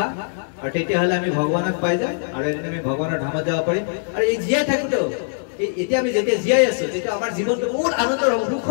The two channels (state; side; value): silent; right; 65 dB below the other